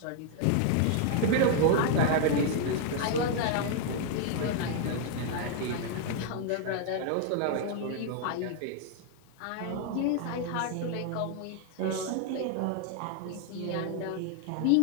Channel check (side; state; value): both; different; correlation 0.00